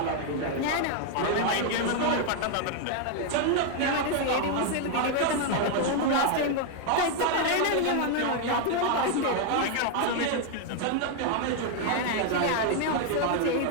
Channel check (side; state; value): both; different; correlation 0.00